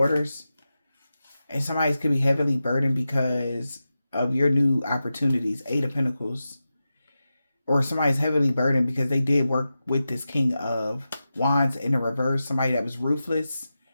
And somebody could be heavily burdened because of your new opportunities. 8 of Pentacles. Or somebody's heavily burdened because they did work with this King of Wands in the reverse. Somebody that was ruthless,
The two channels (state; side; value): inverted; both; correlation -0.92